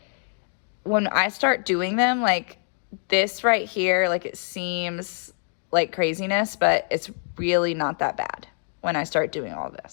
when I start doing them, like this right here, like it seems like craziness, but it's really not that bad when I start doing all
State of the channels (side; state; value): right; silent; 57 dB below the other